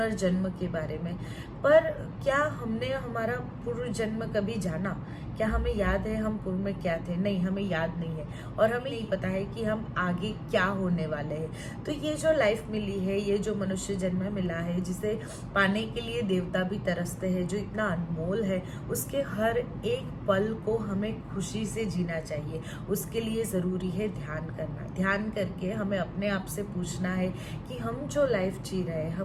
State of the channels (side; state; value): both; identical; correlation 1.00